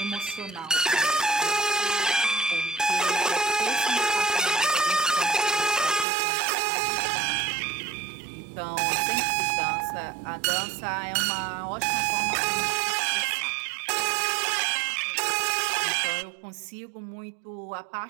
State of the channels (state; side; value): drops out; left; at 6.1 s